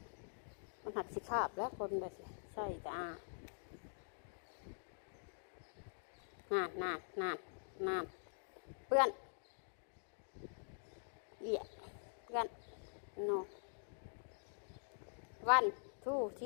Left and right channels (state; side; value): silent; right; digital silence